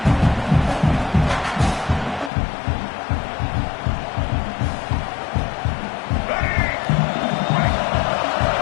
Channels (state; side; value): drops out; right; at 2.3 s